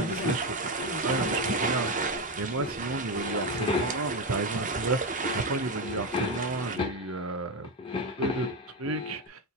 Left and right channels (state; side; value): normal; both; correlation 0.12